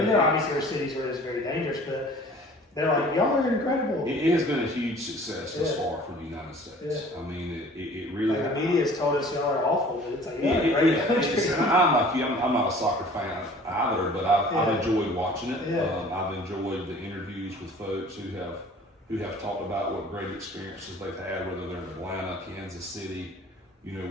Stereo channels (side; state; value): both; normal; correlation 0.49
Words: there are cities where it's very dangerous, but they're like, y'all are incredible. It has been a huge success thus far for the United States. I mean, it really. Like, the media has told us y'all are awful, but it's like, I'm like you. I'm not a soccer fan either, but I've enjoyed watching it. I've enjoyed the interviews with folks who have talked about what great experiences they've had, whether they're in Atlanta, Kansas City,